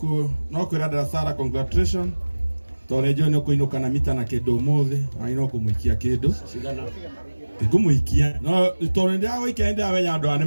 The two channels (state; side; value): inverted; both; correlation -1.00